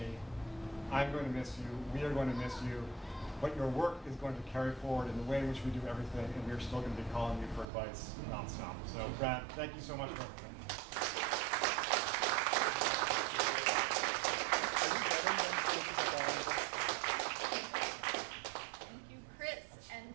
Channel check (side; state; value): left; drops out; at 7.7 s